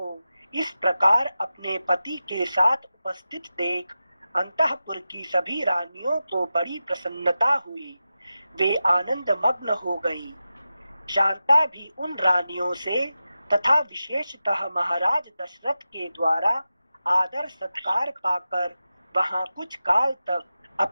इस प्रकार अपने पति के साथ उपस्थित देख अंतःपुर की सभी रानियों को बड़ी प्रसन्नता हुई। वे आनंद मग्न हो गई। शांता भी उन रानियों से तथा विशेषतः महाराज दशरथ के द्वारा आदर सत्कार पाकर वहां कुछ काल तक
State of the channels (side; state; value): both; inverted; correlation -0.92